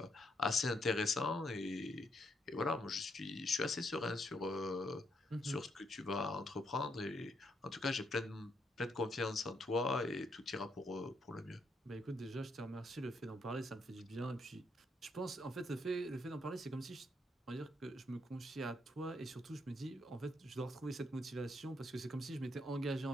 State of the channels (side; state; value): both; normal; correlation 0.76